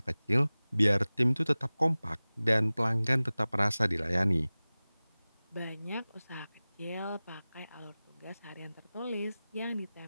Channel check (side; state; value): both; inverted; correlation -0.98